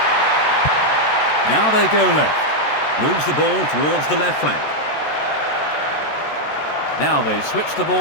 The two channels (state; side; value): late; right; 14 ms